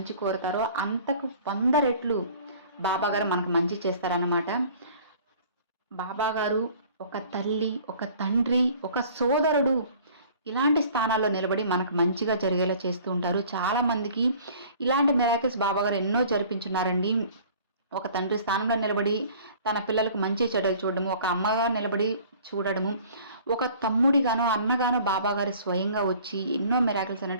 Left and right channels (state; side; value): inverted; both; correlation -0.50